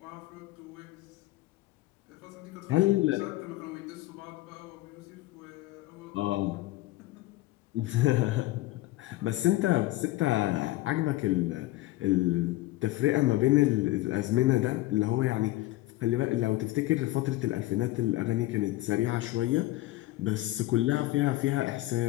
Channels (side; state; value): right; quieter; 17.6 dB